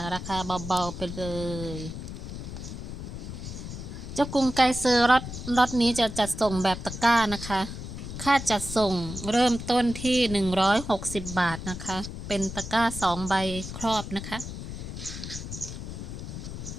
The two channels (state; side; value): noise; left; rumble, 8 dB below the sound